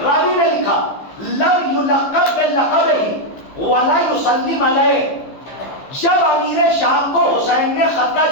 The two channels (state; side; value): late; right; 15 ms